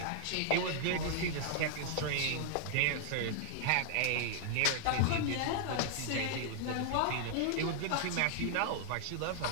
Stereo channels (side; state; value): both; different; correlation 0.00